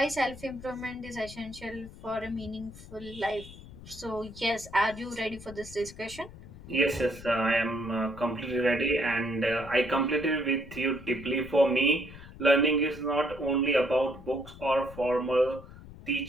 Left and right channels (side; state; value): left; noise; rumble, 16 dB below the sound